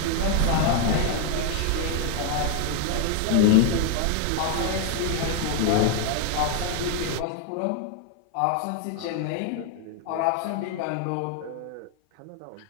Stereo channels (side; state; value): both; different; correlation 0.00